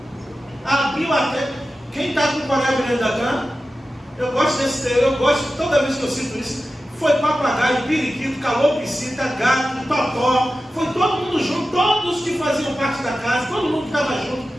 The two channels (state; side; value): normal; both; correlation 0.93